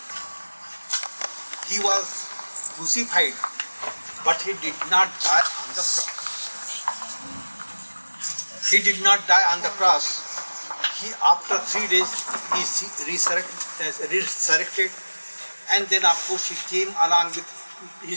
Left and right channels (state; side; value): inverted; both; correlation -1.00